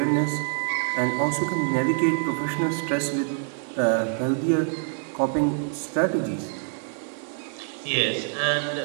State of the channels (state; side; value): silent; left; 61 dB below the other